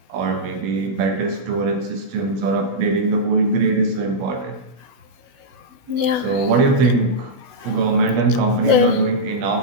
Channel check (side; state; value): left; late; 16 ms